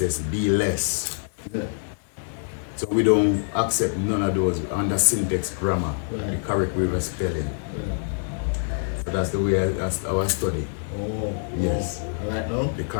be less. Yeah. So we don't accept none of those under syntax grammar, the correct way of spelling. So that's the way that's our study. Oh. Yes. Alright now? The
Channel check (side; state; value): right; silent; digital silence